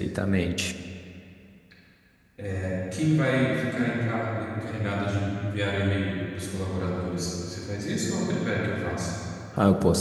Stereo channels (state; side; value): identical; both; correlation 1.00